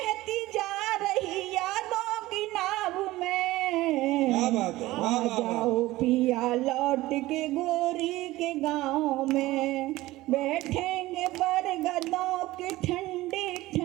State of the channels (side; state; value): left; quieter; 17.9 dB